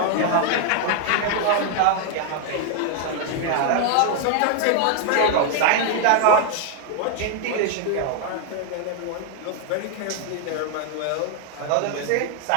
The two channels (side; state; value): both; different; correlation 0.00